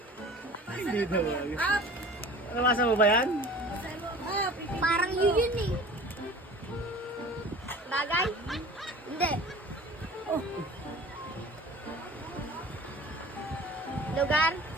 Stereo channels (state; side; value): normal; both; correlation 0.42